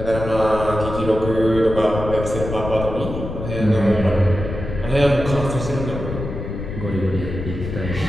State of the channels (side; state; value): left; noise; rumble, 7 dB below the sound